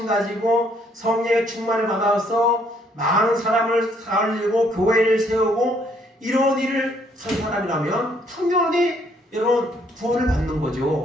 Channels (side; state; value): both; normal; correlation 0.67